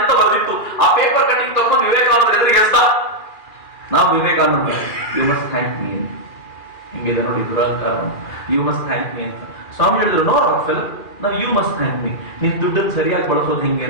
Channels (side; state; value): right; late; 2.4 ms